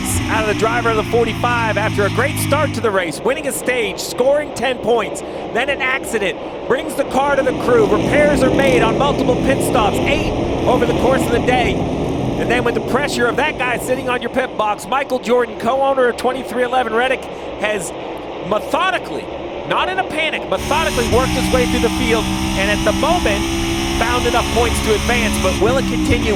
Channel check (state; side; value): identical; both; correlation 1.00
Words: out of the driver of the 45 after a great start to the race, winning a stage, scoring 10 points, then an accident, brings the car to the crew, repairs are made on multiple pit stops, 8 over the course of the day. And then with the pressure of that guy sitting on your pit box, Michael Jordan, co-owner of 2311 Reddick, has methodically, not in a panic, methodically worked his way through the field, and at the moment found enough points to advance. But will it continue?